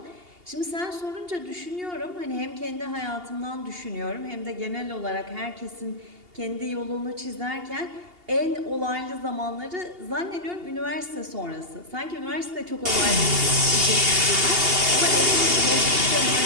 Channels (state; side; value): late; left; 2.8 ms